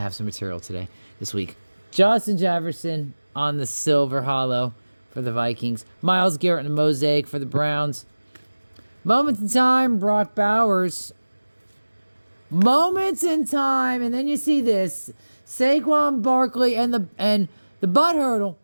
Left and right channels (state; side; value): inverted; both; correlation -1.00